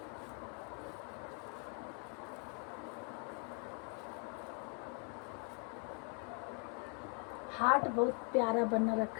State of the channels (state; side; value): quieter; right; 38.5 dB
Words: हार्ट बहुत प्यारा बना